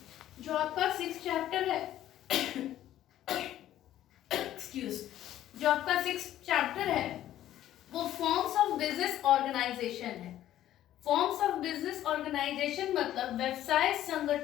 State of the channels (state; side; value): quieter; right; 12.7 dB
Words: जो आपका 6 चैप्टर है जो आपका 6 चैप्टर है वो फॉर्म्स ऑफ बिजनेस ऑर्गेनाइजेशन है। फॉर्म्स ऑफ बिजनेस ऑर्गेनाइजेशन मतलब व्यवसाय